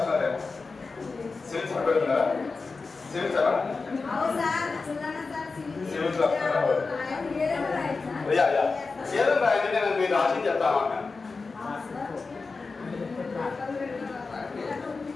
సివిల్స్ పెడుతున్నారా? సివిల్స్ అలా సివిల్స్ రాస్తున్నారా? ఏదో రాయండి, నేను మీరు రాసి చెప్తాను అన్న.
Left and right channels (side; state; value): right; quieter; 4.2 dB